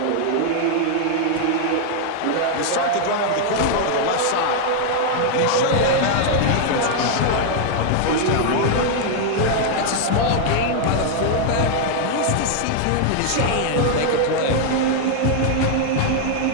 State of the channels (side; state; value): both; different; correlation 0.00